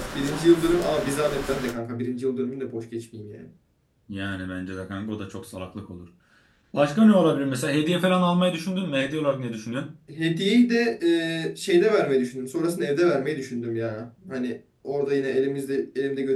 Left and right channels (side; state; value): both; identical; correlation 1.00